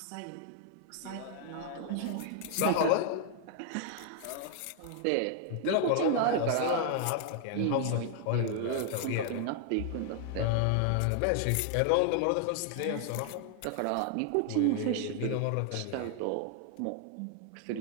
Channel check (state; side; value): different; both; correlation 0.00